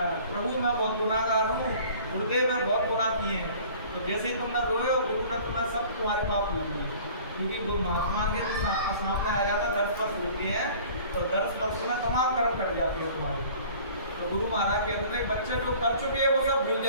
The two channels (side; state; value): both; inverted; correlation -0.48